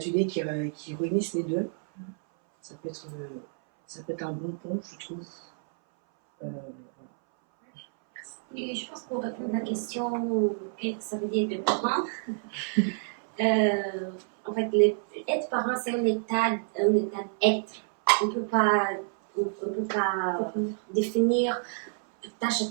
qui réunissent les deux. Ça peut être un bon pont, je trouve. Et je pense pour répondre à la question, qu'est-ce que ça veut dire de parent? En fait, être parent, c'est un état d'être. On ne peut pas définir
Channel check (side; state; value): left; silent; 59 dB below the other